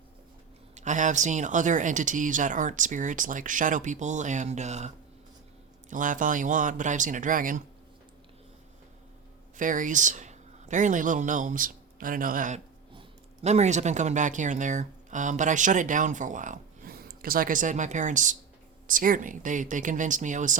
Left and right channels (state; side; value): quieter; left; 6.3 dB